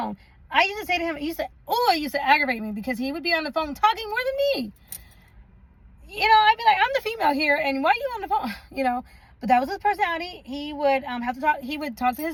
I used to say to him, it used to aggravate me, because he would be on the phone talking more than me. You know, I'd be like, I'm the female here, and why are you on the phone? You know, but that was his personality. He would have to talk. He would talk to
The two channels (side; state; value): both; identical; correlation 1.00